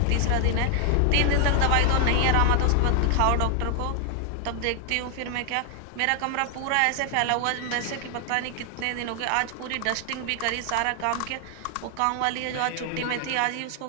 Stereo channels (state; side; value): different; both; correlation 0.00